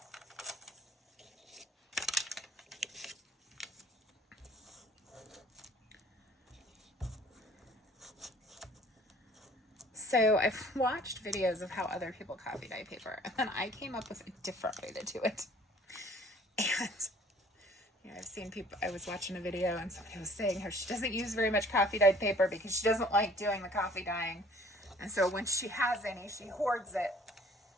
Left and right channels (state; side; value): normal; both; correlation 0.53